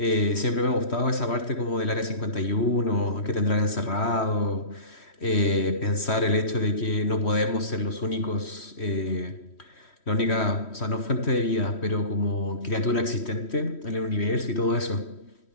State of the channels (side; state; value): right; late; 3.1 ms